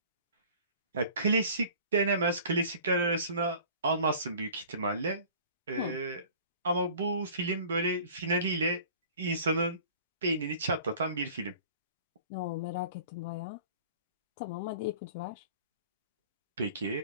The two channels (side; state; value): both; inverted; correlation -0.47